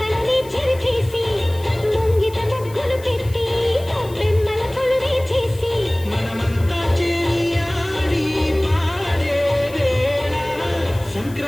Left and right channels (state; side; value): noise; left; hiss, 21 dB below the sound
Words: చెరిపేసి ముంగిట ముగ్గులు పెట్టి బెమ్మల కొలువే చేసి మనమంతా చేరి ఆడి పాడే వేళ